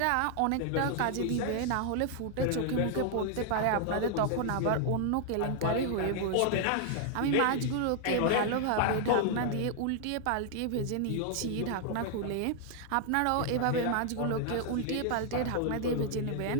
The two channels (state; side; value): different; both; correlation 0.00